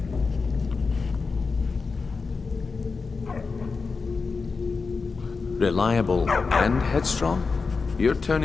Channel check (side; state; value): right; quieter; 4.5 dB